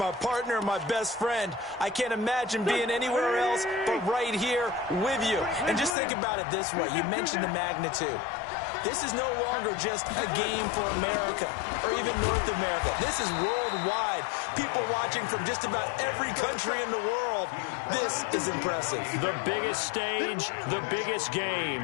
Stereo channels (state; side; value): drops out; right; at 6.0 s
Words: partner, my best friend. I can't imagine being anywhere else but right here with you. And just think about it this way. You mentioned the magnitude. This is no longer just a game for America or even North America. This is worldwide. People watching from just about every country in the world. This is impressive. The biggest stage, the biggest